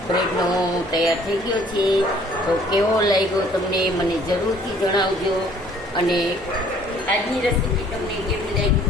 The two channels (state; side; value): normal; both; correlation 0.58